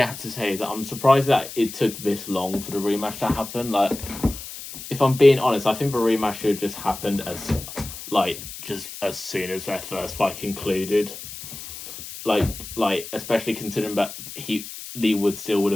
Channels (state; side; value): noise; left; hiss, 11 dB below the sound